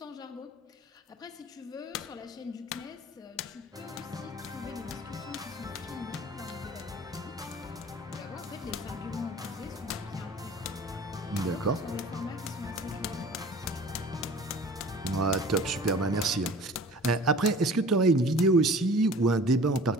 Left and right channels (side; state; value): both; normal; correlation 0.45